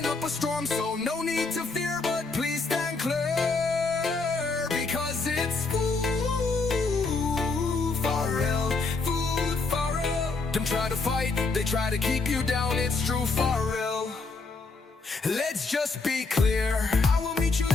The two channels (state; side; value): quieter; right; 4.0 dB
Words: up a storm, so no need to fear, but please stand clear, because it's Food-Farrell. Food-Farrell. Them try to fight, they try to keep you down, it's true Farrell. Let's just be clear, I will meet you